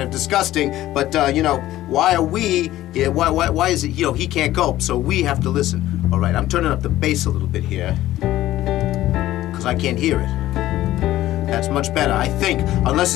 of disgusting, but you know, why are we? Yeah, why is it? You know, he can't cope, so we have to listen. All right, I'm turning up the bass a little bit here because I can't hear it. That's much better, I think, unless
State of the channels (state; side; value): quieter; right; 14.8 dB